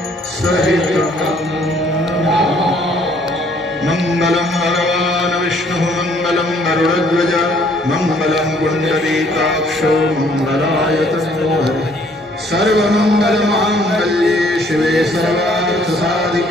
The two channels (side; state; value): both; normal; correlation 0.62